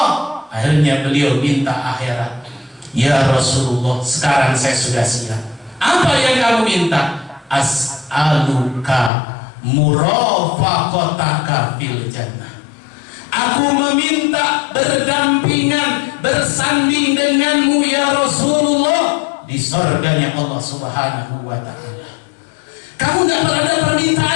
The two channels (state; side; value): drops out; right; at 9.1 s